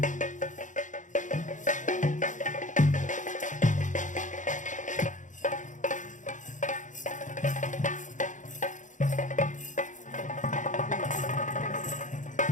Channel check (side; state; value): right; late; 0.36 ms